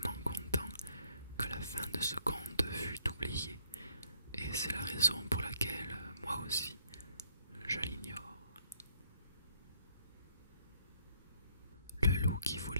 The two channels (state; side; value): inverted; both; correlation -0.67